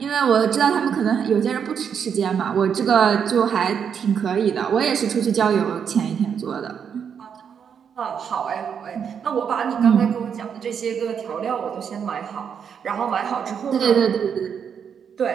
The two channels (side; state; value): left; quieter; 7.4 dB